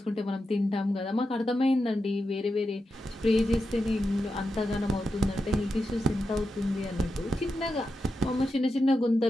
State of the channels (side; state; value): both; normal; correlation 0.88